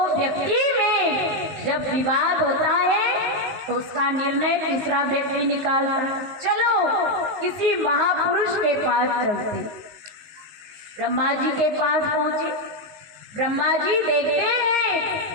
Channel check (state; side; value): late; left; 19 ms